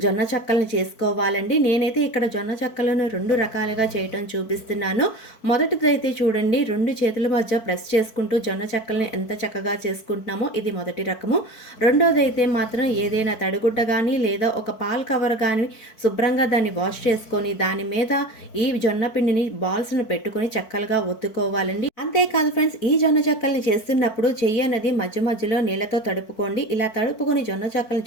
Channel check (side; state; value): right; late; 4.5 ms